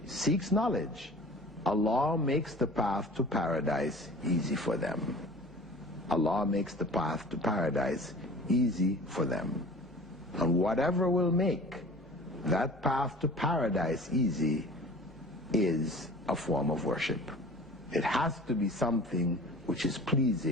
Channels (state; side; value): normal; both; correlation 0.43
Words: seeks knowledge, Allah makes the path to paradise easy for them. Allah makes the path to paradise easy for them. And whatever will make that path to paradise easy is a form of worship. It has to be something which is